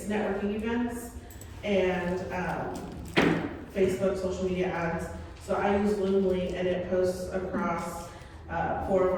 networking events and Facebook social media ads. So I use Loomly, and it posts across 4 of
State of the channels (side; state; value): both; identical; correlation 1.00